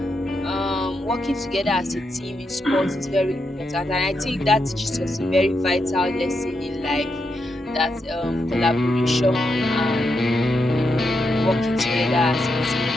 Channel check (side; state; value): both; normal; correlation 0.83